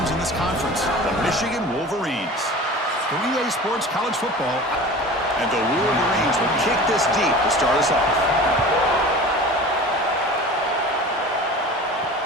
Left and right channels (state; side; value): normal; both; correlation 0.38